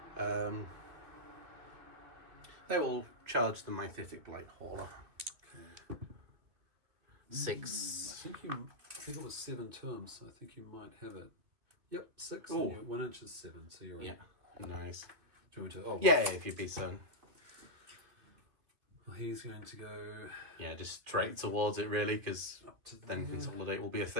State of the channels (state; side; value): late; left; 2.8 ms